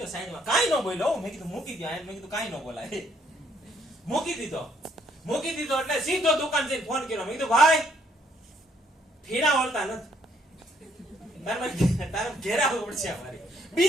સાઈડમાં, કાઈ નો બોલ્યો. મેં કીધું મૂકી દો. મેં કીધું કાઈ નો બોલાય, મૂકી દીધો. એટલે સીધો દુકાન જઈને ફોન કર્યો. મેં કીધું ભાઈ ફીણા વળતા નથી, તારે ઘેરા પડશે અમારી.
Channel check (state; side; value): normal; both; correlation 0.68